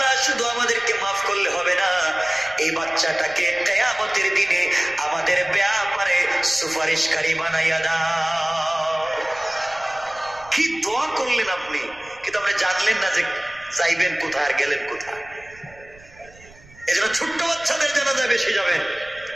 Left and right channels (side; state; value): right; noise; rumble, 24 dB below the sound